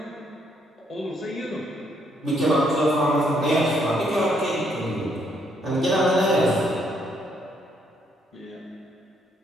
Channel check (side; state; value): both; normal; correlation 0.71